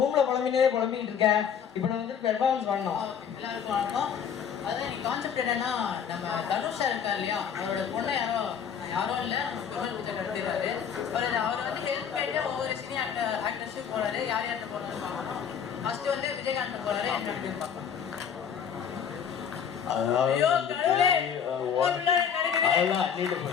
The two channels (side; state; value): right; quieter; 7.8 dB